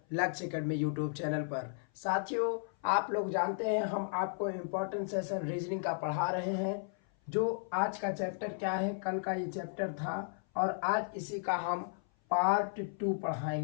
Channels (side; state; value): right; silent; 55 dB below the other